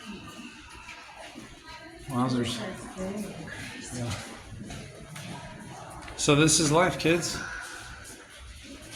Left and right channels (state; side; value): identical; both; correlation 1.00